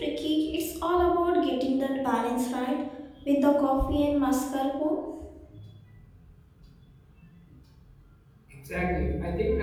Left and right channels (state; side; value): identical; both; correlation 1.00